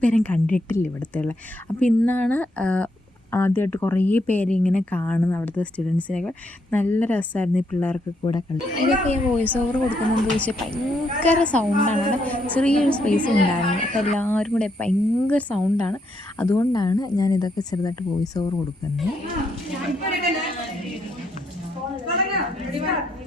പേരും കണ്ടിട്ടില്ല ഇവിടുത്തെ ഉള്ള. അപ്പോൾ ഇന്നാണ് ആദ്യമായിട്ട് കുറേ പേര് ഇങ്ങനെ കാണുന്നത്, അവിടുത്തെ സ്റ്റുഡൻസിനൊക്കെ. നല്ല രസമായിരുന്നു ഈ പിള്ളേർക്ക് കൂടെ കളി. ഇതൊക്കെ ഞാൻ വോയിസ് ഓവർ കൊടുക്കുന്നതെന്ന് ചോദിച്ചാൽ ഭയങ്കര സൗണ്ടാണ്. അവിടെ ചെറിയൊരു സ്പേസ് ഉണ്ടായിരുന്നു. അപ്പോൾ എല്ലാവരും കൂടെ ഭയങ്കര സൗണ്ടാണ്. അതുകൊണ്ടാണ് ഞാൻ ഇതൊക്കെ ചെറുതായിട്ട് വോയിസ് ഓവർ കൊടുക്കുന്നത്.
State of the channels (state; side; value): normal; both; correlation 0.76